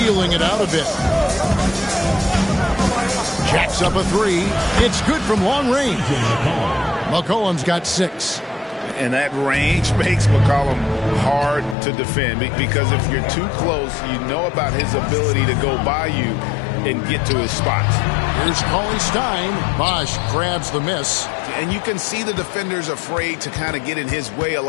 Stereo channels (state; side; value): drops out; right; at 11.8 s